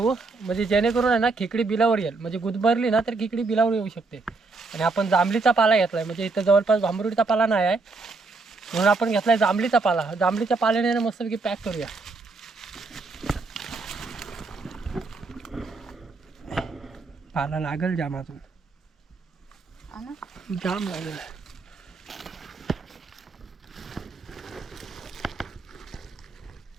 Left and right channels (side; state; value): left; quieter; 3.8 dB